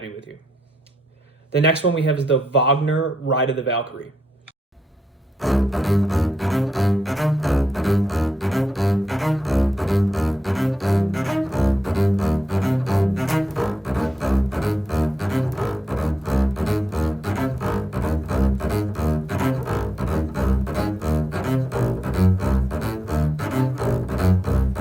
with you. The next one we have is the Wagner Ride of the Valkyrie.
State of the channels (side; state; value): both; normal; correlation 0.86